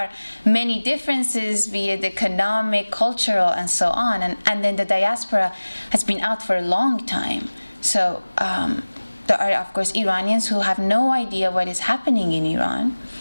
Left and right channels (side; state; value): both; inverted; correlation -1.00